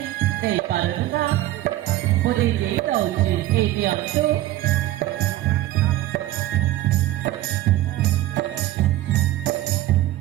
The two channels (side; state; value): left; quieter; 15.3 dB